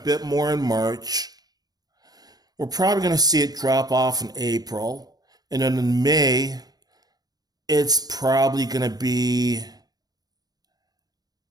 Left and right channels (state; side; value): late; left; 0.19 ms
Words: more in March. We're probably going to see it drop off in April. And then in May, it's probably going to be